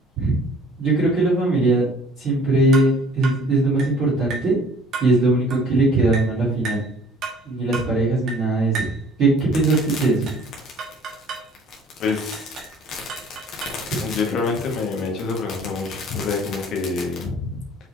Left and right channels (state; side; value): normal; both; correlation 0.53